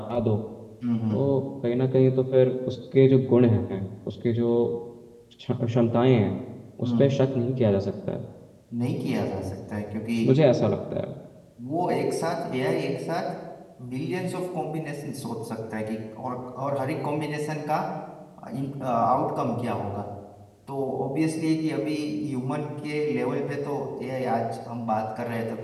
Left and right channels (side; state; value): both; identical; correlation 1.00